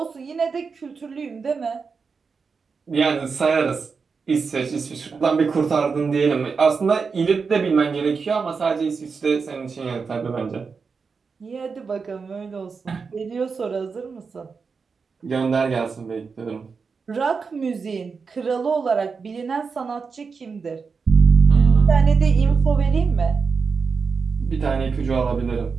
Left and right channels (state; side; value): quieter; left; 5.2 dB